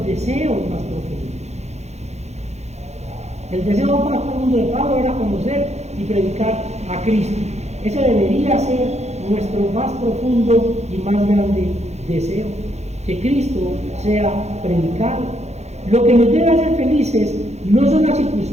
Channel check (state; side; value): late; left; 0.32 ms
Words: deseos más profundos. El deseo más profundo de Pablo era conocer y predicar a Cristo. Ese debería ser nuestro más profundo y más grande deseo, que Cristo sea predicado. Lo que nos debe hacer felices no son las